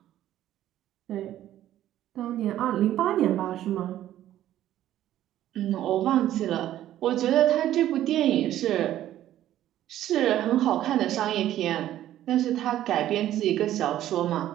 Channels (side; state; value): left; quieter; 12.7 dB